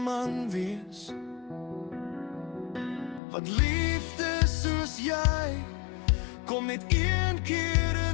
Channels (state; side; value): drops out; right; at 3.2 s